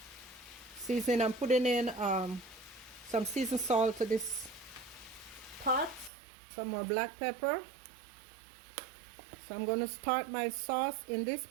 seasoning. I'm putting in some seasoned salt to this pot, some more black pepper. So I'm going to start my sauce in this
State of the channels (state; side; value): drops out; left; at 6.1 s